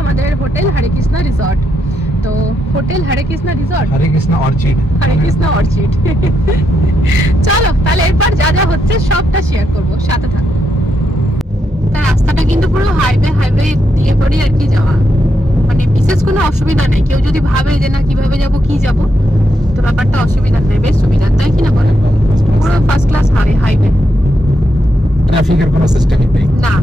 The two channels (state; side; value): normal; both; correlation 0.81